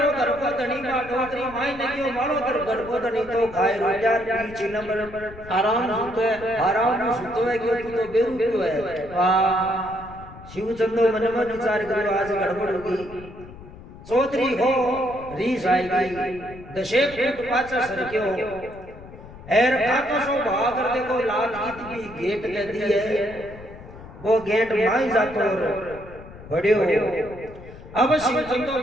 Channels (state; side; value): noise; left; rumble, 17 dB below the sound